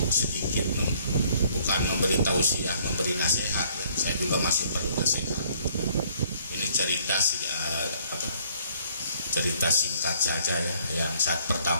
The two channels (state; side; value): inverted; both; correlation -0.62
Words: sedikit bukan memberi tausiah, memberi nasihat ya. Saya juga masih perlu nasihat. Ini cerita cerita singkat saja ya. Yang saat